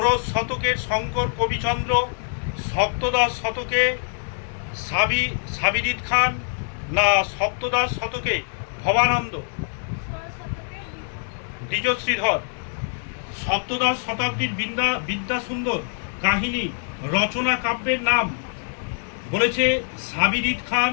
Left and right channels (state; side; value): silent; right; digital silence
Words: শতকের শঙ্কর কবিচন্দ্র, সপ্তদশ শতকে সাবিরিদ খান না সপ্তদশ শতকে ভবানন্দ? দ্বিজ শ্রীধর। সপ্তদশ শতাব্দীর বিদ্যা সুন্দর কাহিনী রচনা কাব্যের নাম বলেছে সাবিরিদ খান,